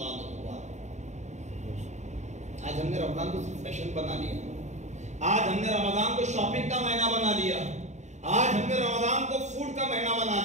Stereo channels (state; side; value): late; left; 0.34 ms